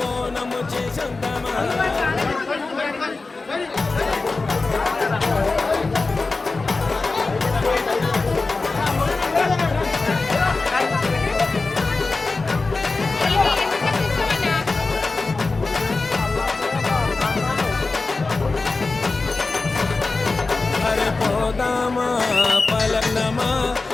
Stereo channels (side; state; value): right; quieter; 3.7 dB